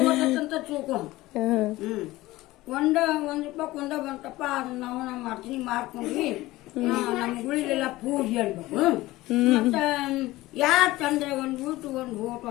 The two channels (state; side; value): quieter; right; 18.2 dB